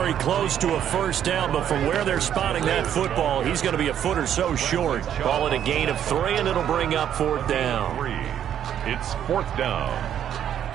close to a first down, but from where they're spotting that football, he's going to be a foot or so short. Call it a gain of 3, and it'll bring up 4th down. It's 4th down.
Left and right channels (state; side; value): quieter; left; 9.9 dB